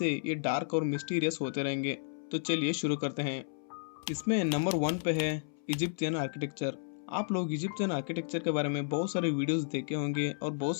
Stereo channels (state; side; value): silent; right; 56 dB below the other